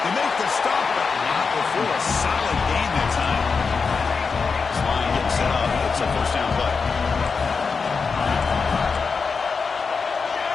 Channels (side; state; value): right; quieter; 5.1 dB